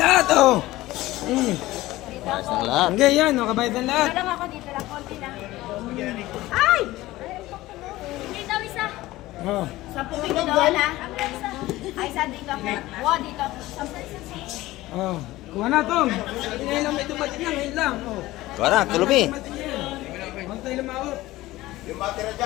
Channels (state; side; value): quieter; right; 17.6 dB